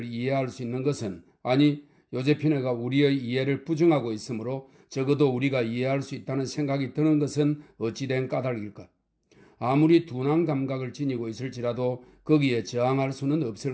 이해할 수 있는 것은 요제피네가 우리의 이해를 부정하고 있으므로 적어도 우리가 이해할 수 있다는 생각이 드는 것은 어찌된 까닭일까? 아무리 둔한 감각을 지니고 있을지라도 거기에 저항할 수는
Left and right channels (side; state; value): both; identical; correlation 1.00